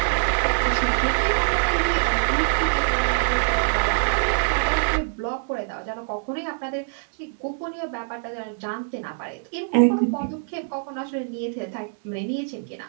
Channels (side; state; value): left; silent; digital silence